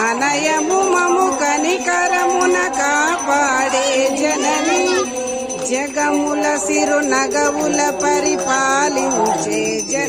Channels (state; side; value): identical; both; correlation 1.00